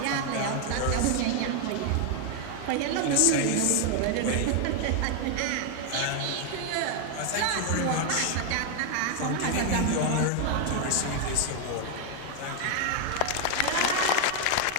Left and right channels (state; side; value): different; both; correlation 0.00